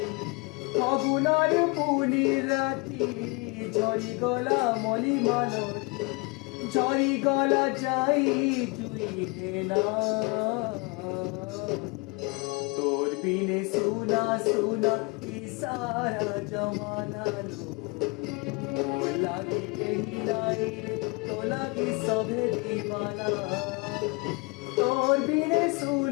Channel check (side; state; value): right; quieter; 28.1 dB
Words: ফাগুনার পুনি রাতি ঝরি গলা মলি মালতি ঝরি গলা যাই তুই না তোর বিনে সুনা সুনা ইসারা জমানা লো लागी कहीं लाई तो लागी सभे दीवाना तोर बिने